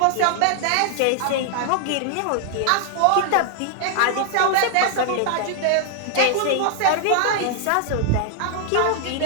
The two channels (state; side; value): different; both; correlation 0.00